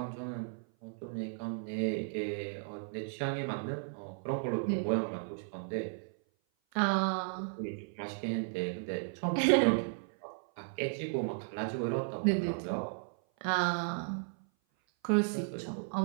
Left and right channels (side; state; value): left; silent; 55 dB below the other